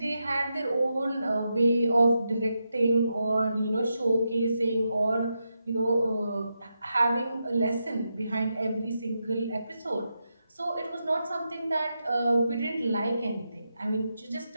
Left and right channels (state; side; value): inverted; both; correlation -0.86